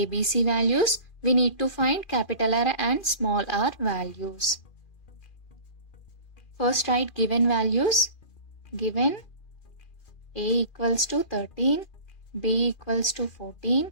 values, we need to find capital R and small r values. First write given values. Given A equals to 13, B equals to 14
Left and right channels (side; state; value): right; late; 2.4 ms